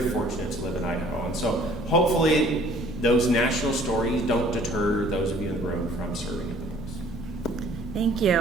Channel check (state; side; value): normal; both; correlation 0.55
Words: fortunate to live in Idaho. And so hopefully those national stories don't deter those of you in the room from serving at the polls. Thank you.